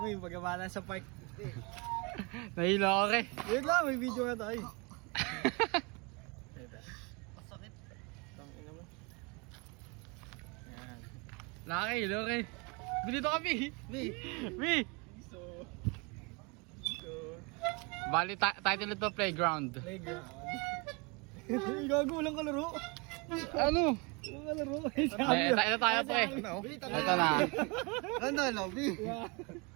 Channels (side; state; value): left; quieter; 30.2 dB